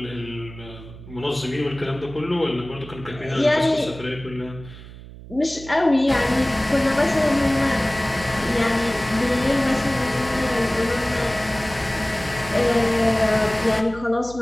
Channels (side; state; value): right; noise; hum, 16 dB below the sound